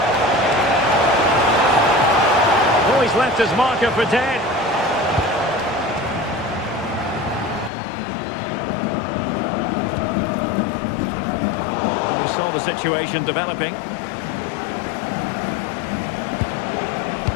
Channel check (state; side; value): drops out; right; at 7.7 s